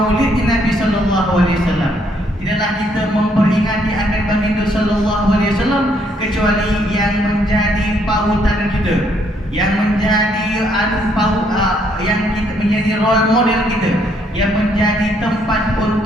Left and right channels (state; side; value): normal; both; correlation 0.70